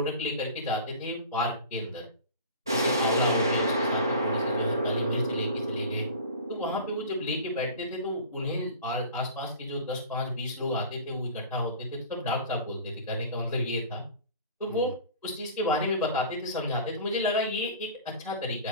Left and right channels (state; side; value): inverted; both; correlation -0.39